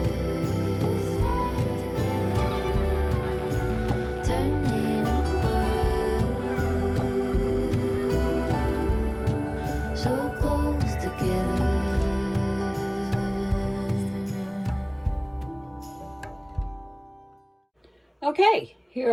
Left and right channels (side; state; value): both; identical; correlation 1.00